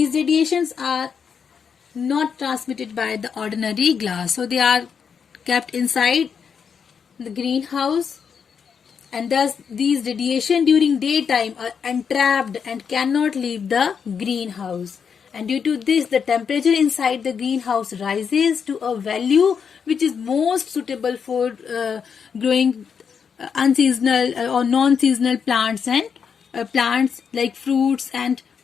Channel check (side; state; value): right; quieter; 6.7 dB